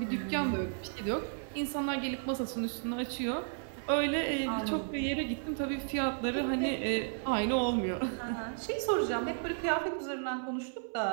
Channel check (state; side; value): silent; left; 55 dB below the other